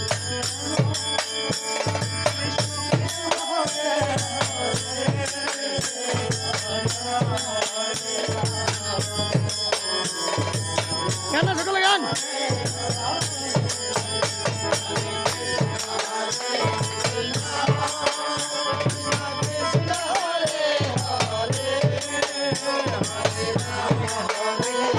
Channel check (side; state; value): both; identical; correlation 1.00